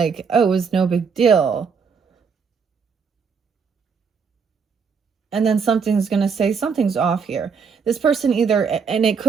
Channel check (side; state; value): left; quieter; 5.9 dB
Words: oh, it was no big deal. And then something's going to say something's off here. This person either, and it